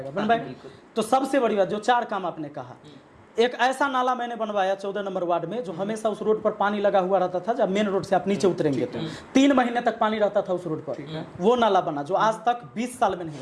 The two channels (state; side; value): identical; both; correlation 1.00